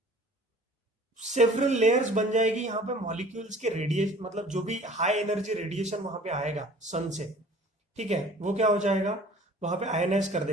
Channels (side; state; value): both; normal; correlation 0.48